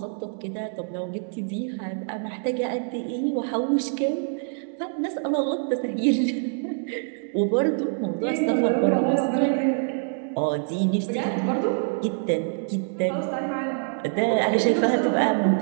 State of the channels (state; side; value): silent; left; 62 dB below the other